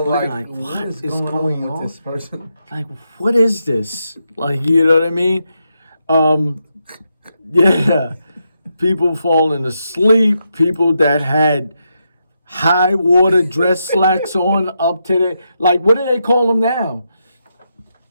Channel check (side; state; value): both; inverted; correlation -0.84